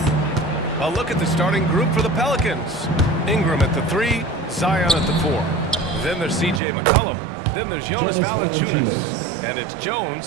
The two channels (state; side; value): drops out; left; at 6.6 s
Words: A look at the starting group for the Pelicans. Ingram at the 3, Zion at the 4. Then there's C.J. McCollum. Then there's Jonas Valanciunas. And it's